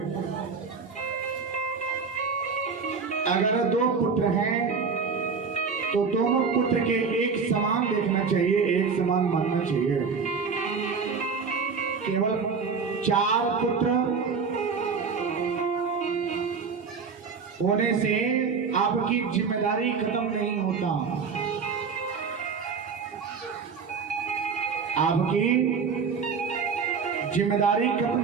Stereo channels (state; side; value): quieter; left; 5.4 dB